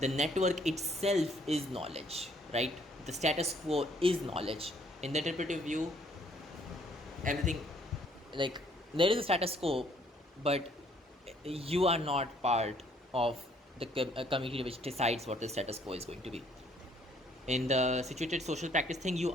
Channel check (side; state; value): both; normal; correlation 0.64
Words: network itself is knowledge, right? The status quo is knowledge. In the interpretive view, everything, like, there is a status quo, but you are not part of the community which decides what the status quo is going to be. In the situated social practice thing, you